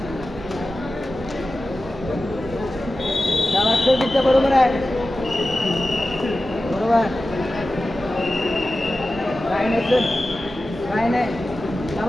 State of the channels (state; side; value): normal; both; correlation 0.94